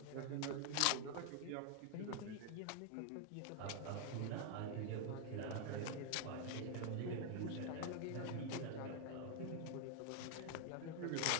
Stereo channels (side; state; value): both; different; correlation 0.00